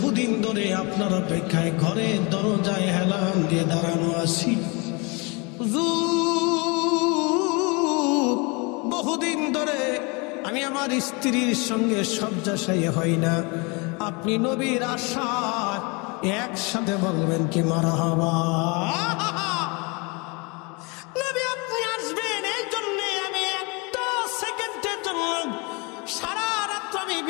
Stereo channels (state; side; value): quieter; right; 29.4 dB